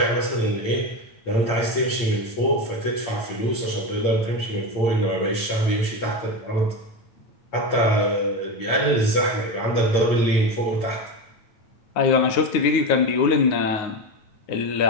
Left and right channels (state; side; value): late; right; 8.7 ms